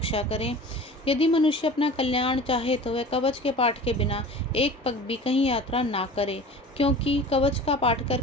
करें। यदि मनुष्य अपना कल्याण चाहे तो वह कवच के पाठ के बिना एक पग भी कहीं यात्रा ना करे, क्योंकि कवच का पाठ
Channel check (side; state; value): both; normal; correlation 0.40